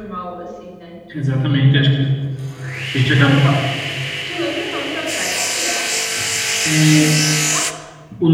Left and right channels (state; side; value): identical; both; correlation 1.00